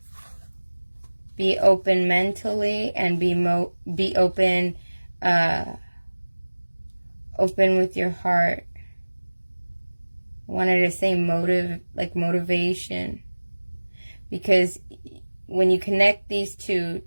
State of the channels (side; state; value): both; inverted; correlation -1.00